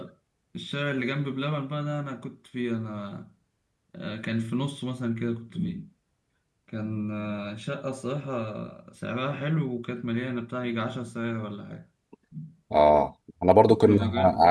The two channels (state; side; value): identical; both; correlation 1.00